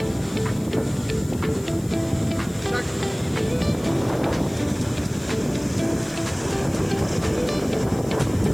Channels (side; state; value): left; noise; hiss, 20 dB below the sound